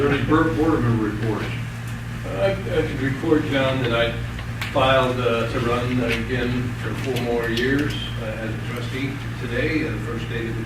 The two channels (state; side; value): identical; both; correlation 1.00